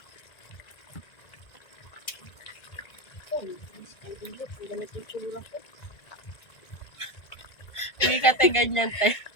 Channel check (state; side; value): late; right; 1.9 ms